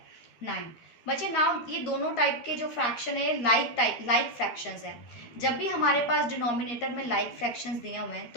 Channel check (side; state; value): right; late; 13 ms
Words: बच्चे नाउ ये दोनों टाइप के जो फ्रैक्शन है लाइक फ्रैक्शंस है। जब भी हमारे पास डिनोमिनेटर में लाइक फ्रैक्शंस दिए हुए हैं